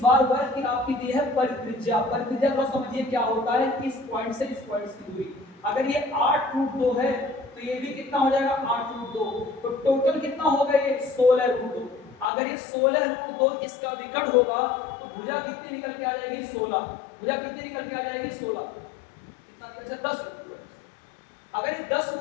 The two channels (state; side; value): drops out; right; at 12.2 s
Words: वर्ग की आपकी दी है परित्रिज्या। परित्रिज्या थोड़ा समझिए क्या होता है, इस पॉइंट से इस पॉइंट की दूरी। अगर ये 8√2 है तो ये भी कितना हो जाएगा 8√2, तो टोटल कितना होगा ये 16√2। अगर ये 16√2 इसका विकर्ण होगा तो भुजा कितनी निकल के आ जाएगी 16। भुजा कितनी निकल के आ जाएगी 16, कितना निकल जाएगा 10। अगर ये 10